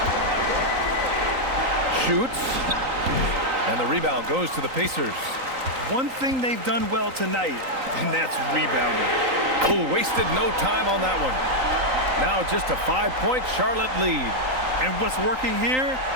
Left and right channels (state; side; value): late; left; 3.9 ms